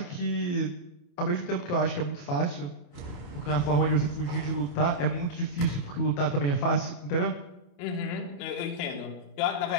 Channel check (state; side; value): late; right; 28 ms